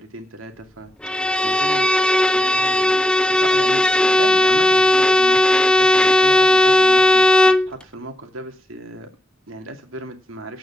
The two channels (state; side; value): normal; both; correlation 0.84